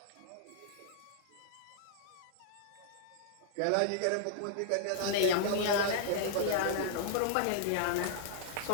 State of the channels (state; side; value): different; both; correlation -0.01